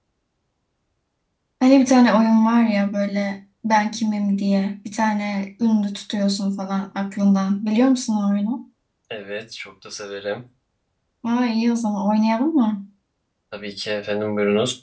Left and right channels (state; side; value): identical; both; correlation 1.00